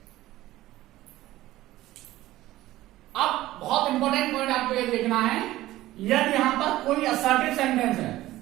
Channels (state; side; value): quieter; left; 15.9 dB